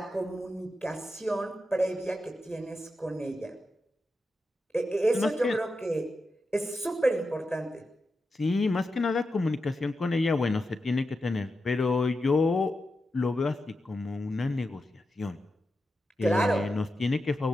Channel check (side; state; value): both; normal; correlation 0.89